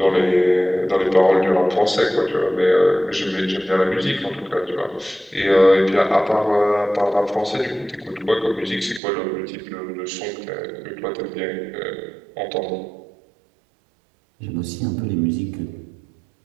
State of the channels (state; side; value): drops out; left; at 9.0 s